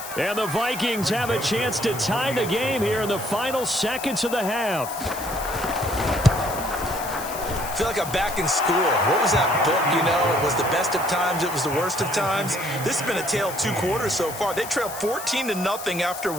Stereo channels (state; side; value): noise; left; hiss, 11 dB below the sound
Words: And the Vikings have a chance to tie the game here in the final seconds of the half. I feel like I'm back in school. What was that book, you know? It was the best of times. It was the worst of times. This has been a tale of two quarters so far. They trailed 14-0 after